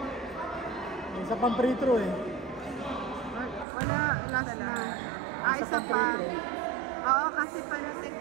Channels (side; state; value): left; drops out; at 3.7 s